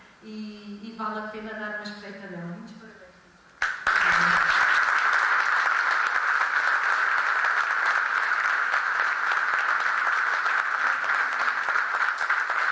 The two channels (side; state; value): both; identical; correlation 1.00